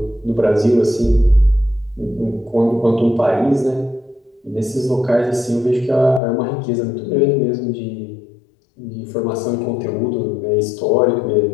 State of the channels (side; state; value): right; drops out; at 6.2 s